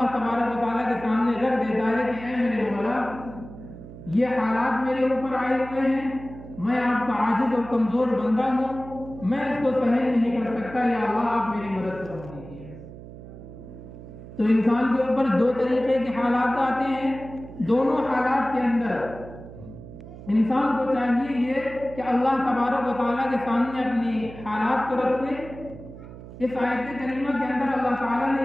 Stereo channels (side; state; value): right; noise; hum, 15 dB below the sound